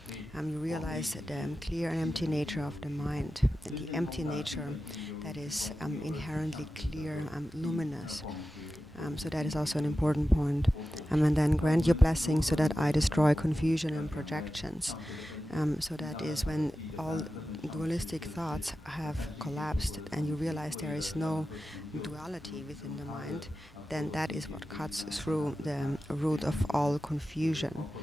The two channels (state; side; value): normal; both; correlation 0.93